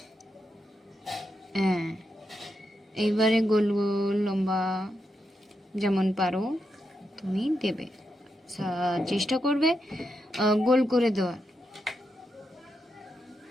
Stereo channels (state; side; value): normal; both; correlation 0.84